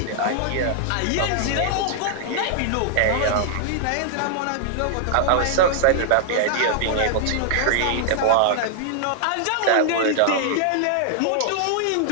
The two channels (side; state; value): both; different; correlation -0.01